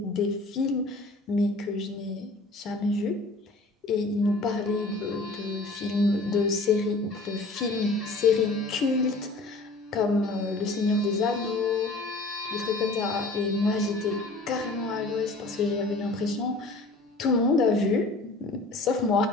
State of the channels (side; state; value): right; quieter; 3.1 dB